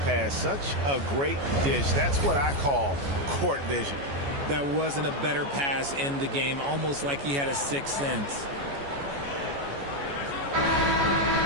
pass. Such a great dish. That's what I call court vision. That wasn't a better pass in the game, almost like he had a 6th sense.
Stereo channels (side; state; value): left; late; 14 ms